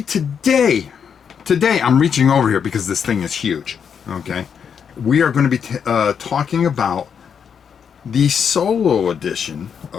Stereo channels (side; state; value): right; quieter; 7.2 dB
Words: today I'm reaching over here because this thing is huge, okay? We are going to be talking about the solo edition